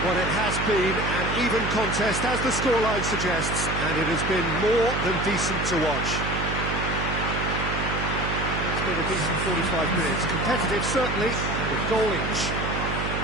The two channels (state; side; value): noise; right; hum, 3 dB below the sound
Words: Well, it has been an even contest, as the scoreline suggests, and it has been more than decent to watch. It's been a decent 45 minutes. Competitive, certainly, and a goal each.